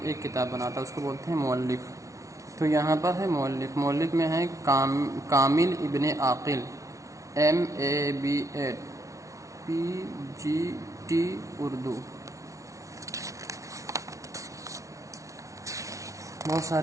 ایک کتاب بناتا ہے، اس کو بولتے ہیں مؤلف۔ تو یہاں پر ہے مؤلف میں ہے کامل ابن عاقل، MABED PGT اردو۔ بہت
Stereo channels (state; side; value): late; left; 0.15 ms